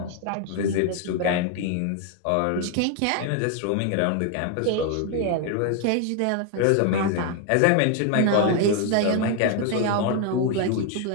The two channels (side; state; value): both; different; correlation 0.01